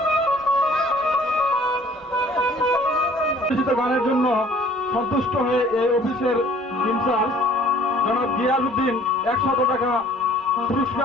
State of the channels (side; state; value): both; normal; correlation 0.54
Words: গানের জন্য সন্তুষ্ট হয়ে এই অফিসের ইনচার্জ জনাব গিয়াসউদ্দিন 100 টাকা